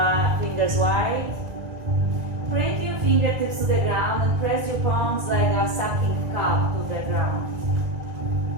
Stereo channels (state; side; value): late; left; 1.7 ms